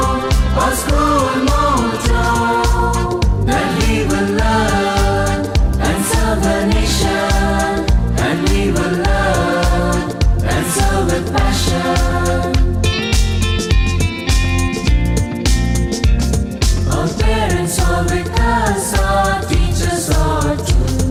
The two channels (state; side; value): identical; both; correlation 1.00